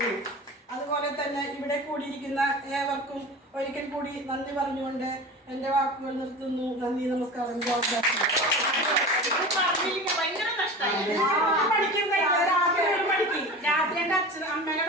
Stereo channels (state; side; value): normal; both; correlation 0.33